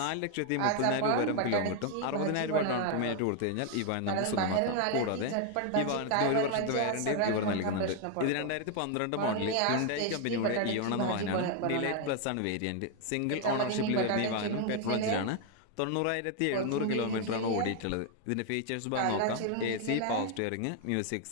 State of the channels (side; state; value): both; different; correlation 0.00